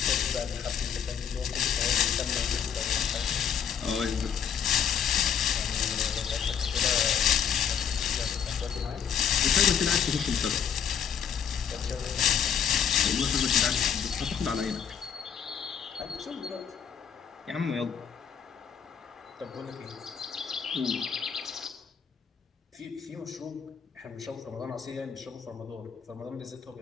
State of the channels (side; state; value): right; quieter; 7.8 dB